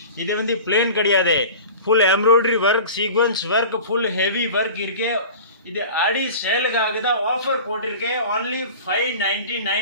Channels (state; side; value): inverted; both; correlation -0.38